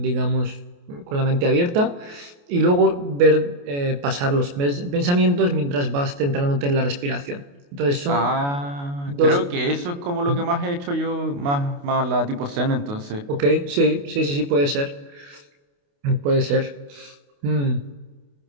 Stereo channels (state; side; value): late; left; 28 ms